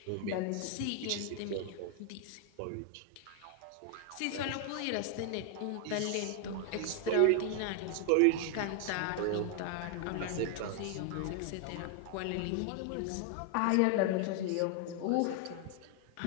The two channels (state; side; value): different; both; correlation 0.00